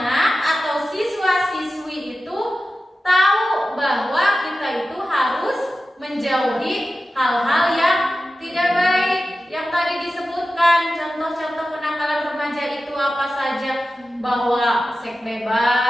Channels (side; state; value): both; normal; correlation 0.94